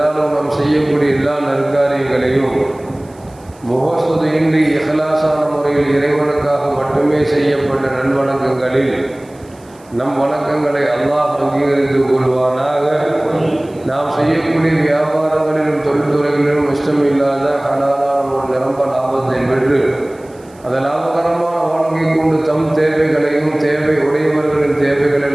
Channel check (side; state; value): right; noise; hiss, 29 dB below the sound